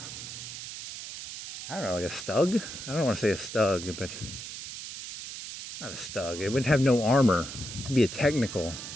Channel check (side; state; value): right; noise; hiss, 9 dB below the sound